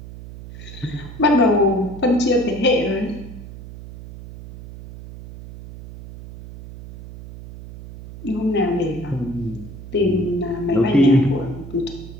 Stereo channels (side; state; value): right; noise; hum, 14 dB below the sound